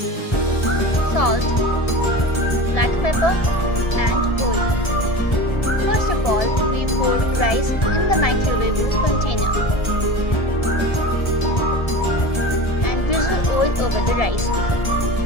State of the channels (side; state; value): right; late; 1.4 ms